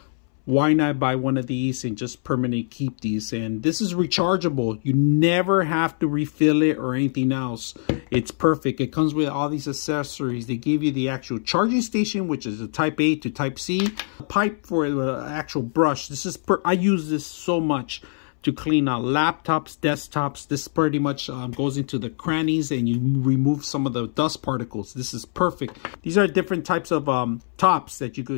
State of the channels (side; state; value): right; silent; 63 dB below the other